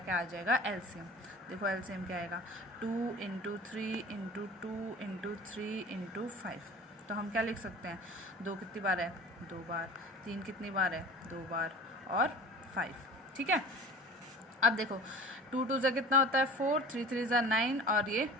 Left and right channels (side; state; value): both; normal; correlation 0.40